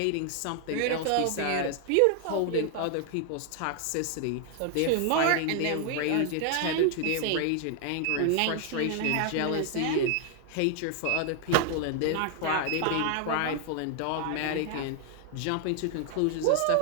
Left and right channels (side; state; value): both; different; correlation 0.00